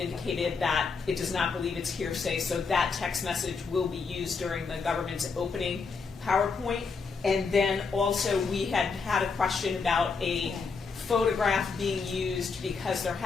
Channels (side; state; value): right; quieter; 4.9 dB